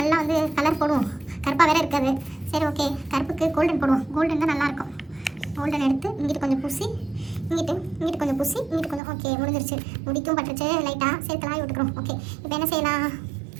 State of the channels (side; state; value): left; drops out; at 9.0 s